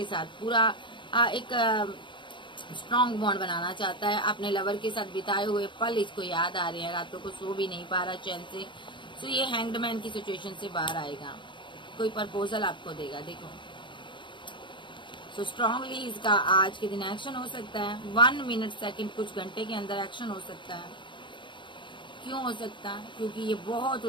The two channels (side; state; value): right; late; 0.23 ms